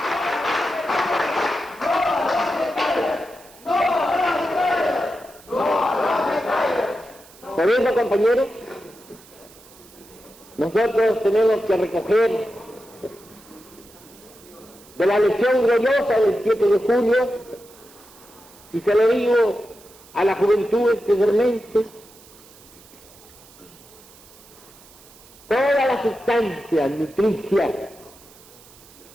Por eso, compañeros, nosotros tenemos que recoger de la lección gloriosa del 7 de julio, y se lo digo a la juventud especialmente, toda la sustancia nutricia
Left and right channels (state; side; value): noise; right; hiss, 23 dB below the sound